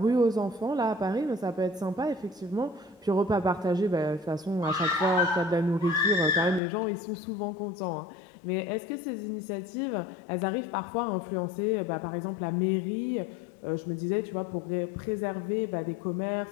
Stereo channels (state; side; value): drops out; right; at 6.6 s